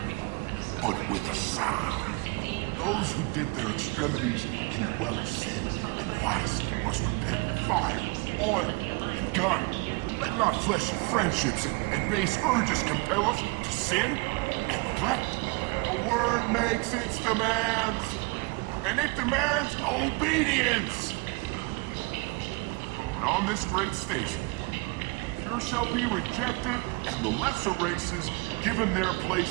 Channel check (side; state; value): left; quieter; 28.4 dB